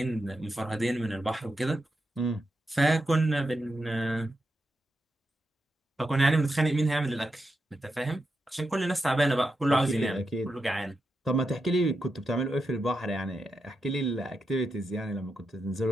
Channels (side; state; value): both; normal; correlation 0.87